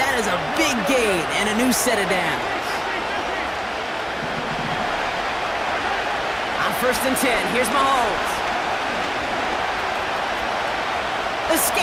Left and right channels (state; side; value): identical; both; correlation 1.00